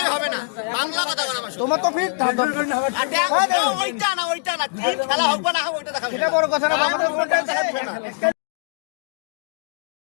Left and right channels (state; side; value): silent; right; digital silence